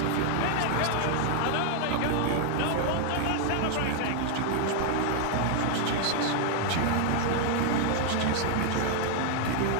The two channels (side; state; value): both; different; correlation 0.00